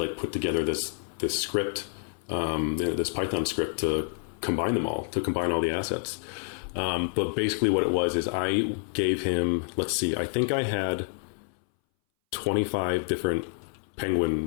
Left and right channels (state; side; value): silent; right; 59 dB below the other